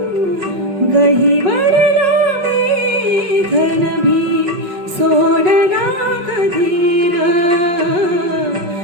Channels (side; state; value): left; late; 5.4 ms